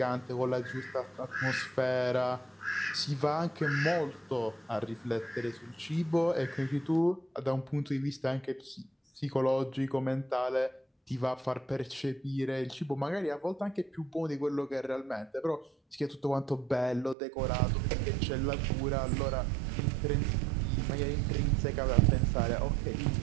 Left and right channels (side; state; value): left; drops out; at 17.2 s